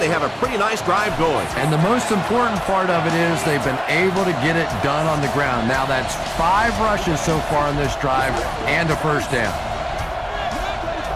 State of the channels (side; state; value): both; identical; correlation 1.00